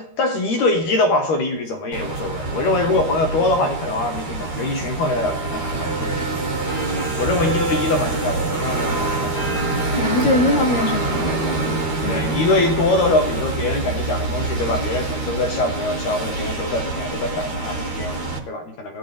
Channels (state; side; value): late; right; 13 ms